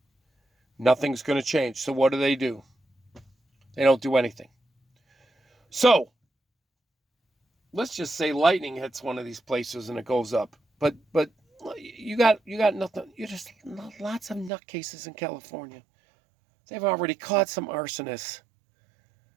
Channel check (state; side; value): drops out; left; at 14.5 s